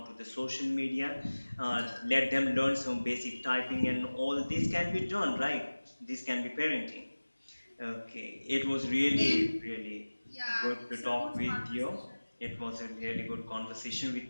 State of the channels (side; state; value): both; inverted; correlation -1.00